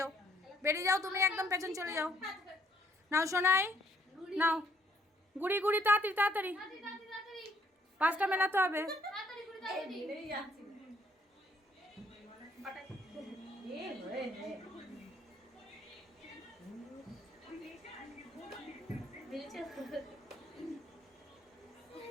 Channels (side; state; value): both; normal; correlation 0.67